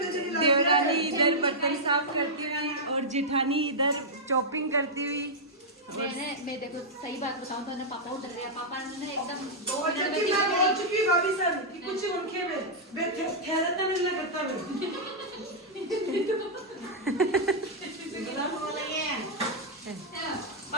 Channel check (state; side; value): normal; both; correlation -0.07